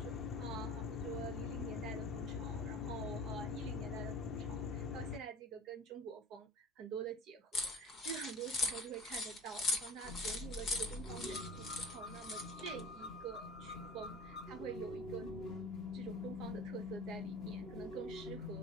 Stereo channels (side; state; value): both; normal; correlation 0.37